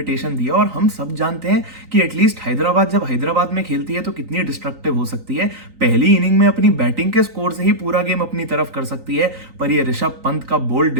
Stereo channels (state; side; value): late; left; 3.9 ms